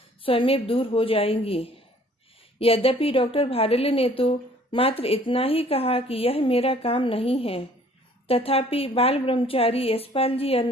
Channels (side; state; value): both; normal; correlation 0.56